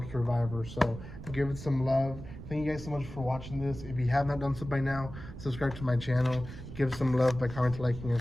Reviver. So give it some love. Thank you guys so much for watching this. If you have not done so by now, subscribe to my channel. Give some love by commenting, liking,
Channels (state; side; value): noise; right; rumble, 12 dB below the sound